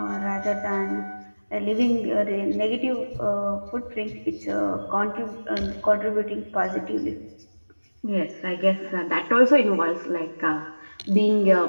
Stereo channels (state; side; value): inverted; both; correlation -1.00